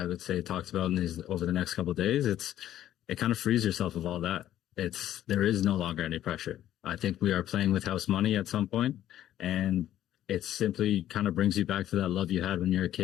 would say, talked about over the next couple of days, it kind of frees yourself of all that. There is no longer any pressure. I think we are playing with house money at some point, and it simply kind of brings you back to that love you had when you're a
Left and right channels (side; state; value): right; quieter; 12.2 dB